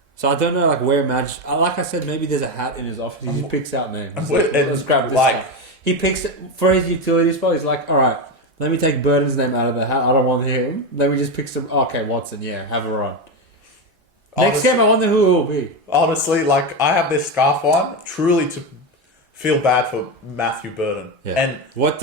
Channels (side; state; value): both; normal; correlation 0.13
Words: So I don't know, like, where Madge... Like I said, maybe there's a hat in his office. He just picks out names. Let's grab this guy. He picks... For his utility spot, he's like, alright, let me take Burden's name out of the hat. I don't want him. Let me just pick some... Okay, Watson, yeah, have a run. Next game, I wonder who it will be. Honestly, like, I have this scarf on, truly to feel bad for Matthew Burden. Yeah. And what